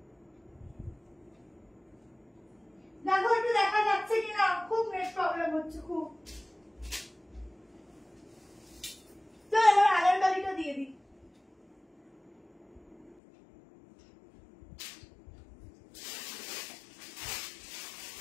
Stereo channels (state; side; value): drops out; right; at 13.2 s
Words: দেখো একটু দেখা যাচ্ছে কিনা, খুব নেট প্রবলেম হচ্ছে খুব। তো এবার আগের গাড়িটা দিয়ে দিই।